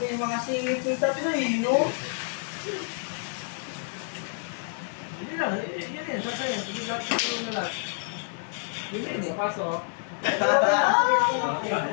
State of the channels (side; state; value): right; silent; 59 dB below the other